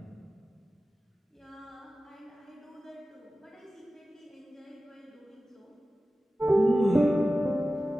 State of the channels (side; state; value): both; normal; correlation 0.95